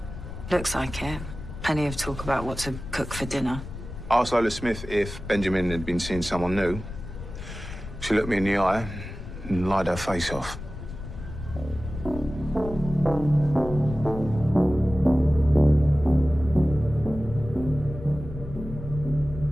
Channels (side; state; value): left; noise; rumble, 10 dB below the sound